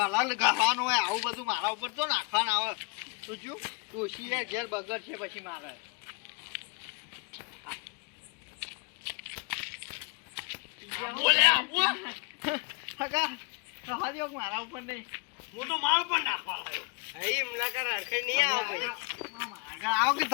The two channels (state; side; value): quieter; right; 32.6 dB